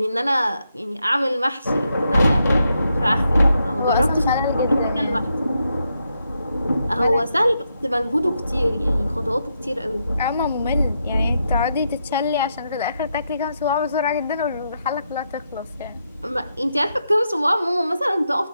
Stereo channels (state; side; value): inverted; both; correlation -0.82